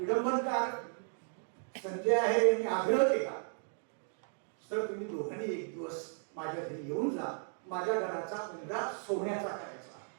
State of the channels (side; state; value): left; silent; 54 dB below the other